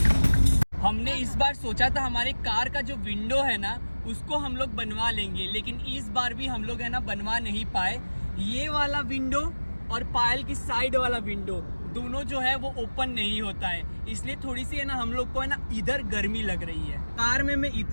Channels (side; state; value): both; inverted; correlation -1.00